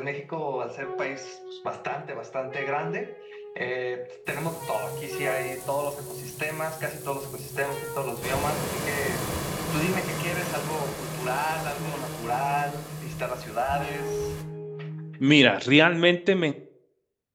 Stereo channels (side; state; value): both; identical; correlation 1.00